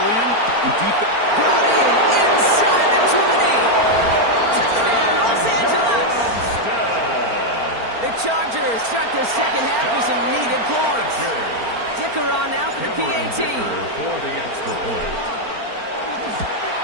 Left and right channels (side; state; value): left; late; 4.4 ms